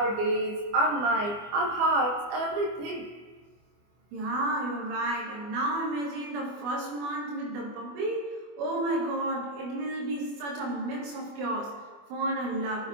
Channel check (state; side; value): late; left; 24 ms